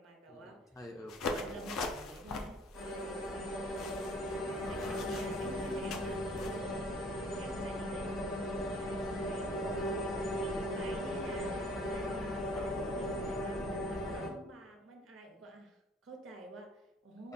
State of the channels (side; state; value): both; normal; correlation 0.55